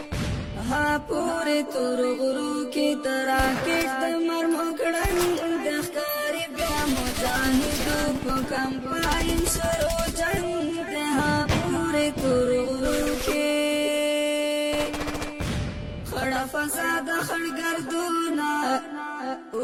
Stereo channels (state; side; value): identical; both; correlation 1.00